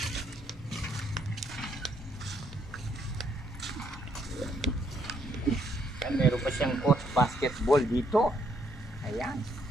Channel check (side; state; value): both; normal; correlation 0.72